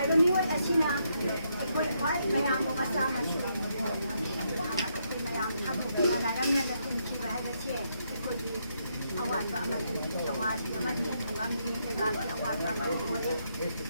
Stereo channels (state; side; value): inverted; both; correlation -0.77